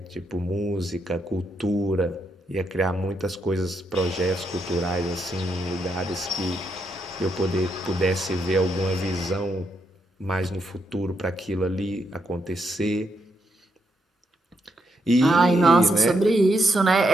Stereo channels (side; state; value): both; normal; correlation 0.79